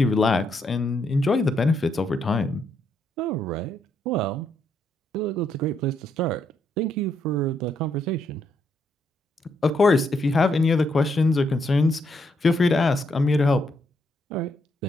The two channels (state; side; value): normal; both; correlation 0.76